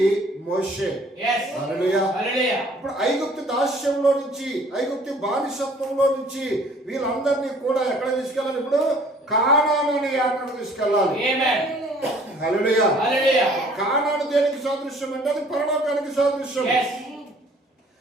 మోషే. ఇప్పుడు ఐగుప్తు దాస్యంలో నుంచి, ఐగుప్తు బానిసత్వంలో నుంచి వీళ్ళందరినీ కూడా ఎక్కడ తీసుకెళ్ళాలి? ఇప్పుడు కానాను అనే యాత్రకు తీసుకెళ్ళాలి. హల్లెలూయా. కానాను దేనికి సాదృశ్యం అంటే అది పరలోకానికి సాదృశ్యం.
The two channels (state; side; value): normal; both; correlation 0.55